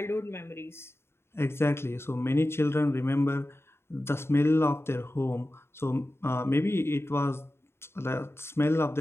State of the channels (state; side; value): late; right; 0.12 ms